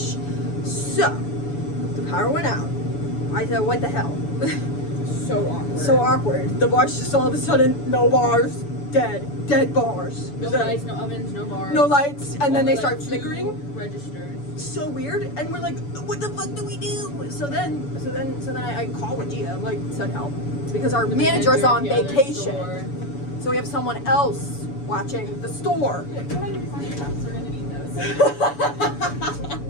So, the power went out. I said, what the hell? So awkward. So awkward. The bars just all of a sudden, no bars, dead bars. No lights, no ovens, no bars. No lights, and then they start flickering. Registers. So weird, and we're like, what the fuck do we do? So then I call Wadia. I'm like, send help, because our manager's on vacation. So we have someone else watching the store. Yeah, come on, find your cups. We're gonna need those.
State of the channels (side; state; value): right; late; 7.0 ms